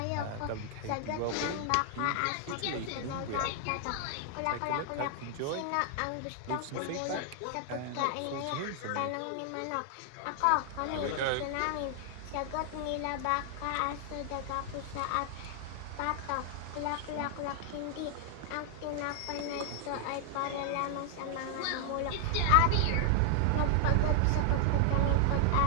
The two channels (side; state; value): both; different; correlation 0.00